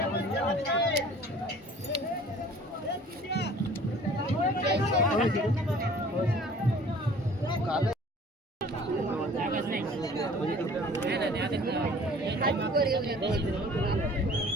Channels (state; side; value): normal; both; correlation 0.49